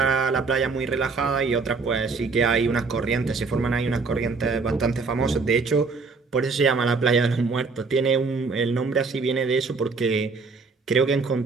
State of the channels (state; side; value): quieter; left; 4.4 dB